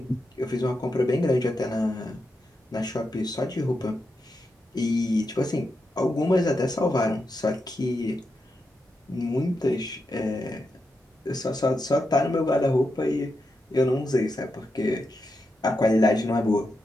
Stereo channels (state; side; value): normal; both; correlation 0.86